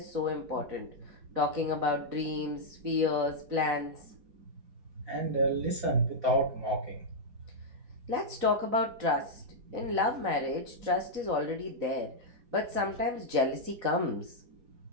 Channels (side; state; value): left; late; 4.1 ms